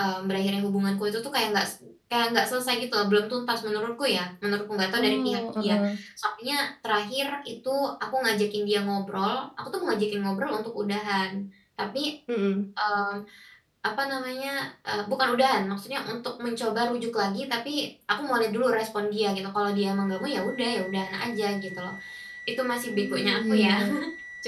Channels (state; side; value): identical; both; correlation 1.00